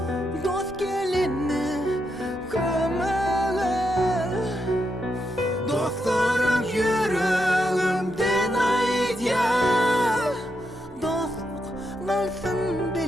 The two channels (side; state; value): both; normal; correlation 0.82